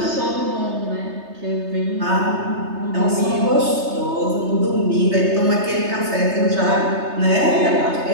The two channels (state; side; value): late; left; 3.3 ms